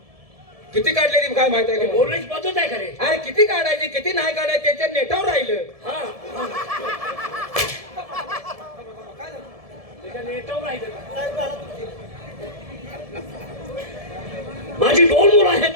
किती काढले ती काय माहित आहे का? बोलण्याची पद्धत आहे का रे? अरे किती काढायची किती नाही काढायची त्याच्या नेटावर राहिलं. हा त्याच्या नेटावर राहिलं का? साहेब आला तुमची. माझी दोन मुलं आहेत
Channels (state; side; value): late; left; 1.7 ms